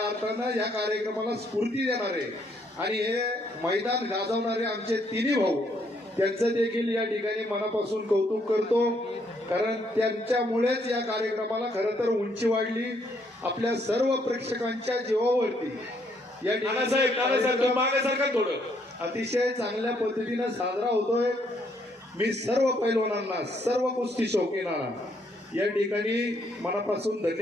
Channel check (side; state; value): both; normal; correlation 0.71